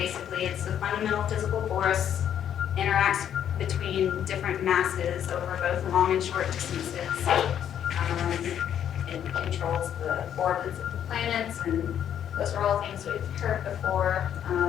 It's a fundamental physical force, interacts between different masses over both long and short distances. It controls the orbits of the planets, and those are all things we've heard before.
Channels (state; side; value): quieter; right; 9.6 dB